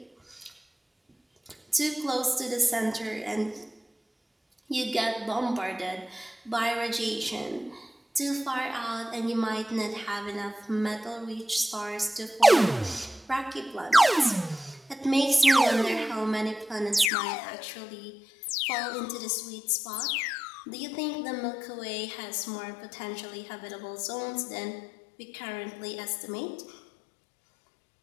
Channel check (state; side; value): drops out; right; at 17.1 s